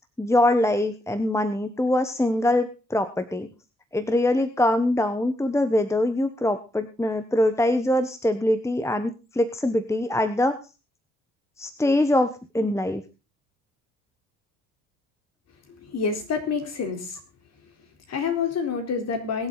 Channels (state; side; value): normal; both; correlation 0.76